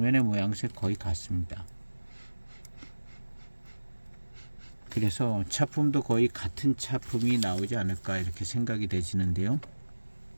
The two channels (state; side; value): inverted; both; correlation -1.00